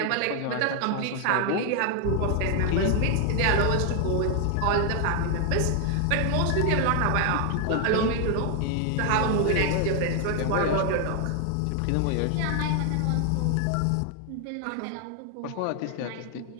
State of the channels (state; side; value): different; both; correlation 0.00